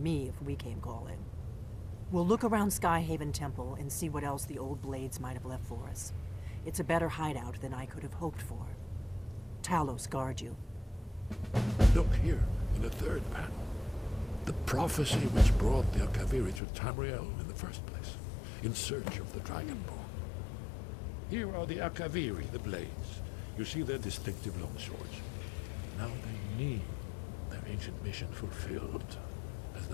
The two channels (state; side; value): drops out; right; at 16.6 s